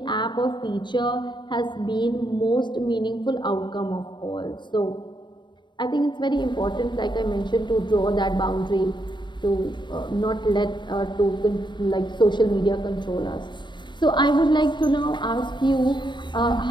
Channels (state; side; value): late; right; 0.22 ms